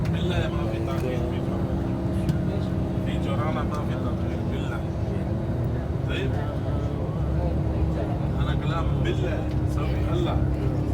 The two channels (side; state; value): both; identical; correlation 1.00